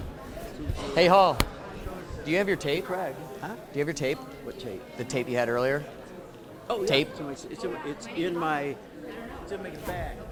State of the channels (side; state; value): both; identical; correlation 1.00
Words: Hey, Hall. Do you have your tape? Craig. Huh? Do you have your tape? What tape? The tape you had earlier? Oh, yeah. Tape? It's in my bag.